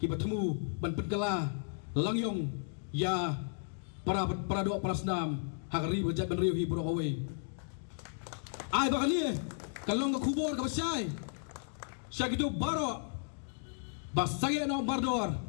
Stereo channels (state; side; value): silent; right; digital silence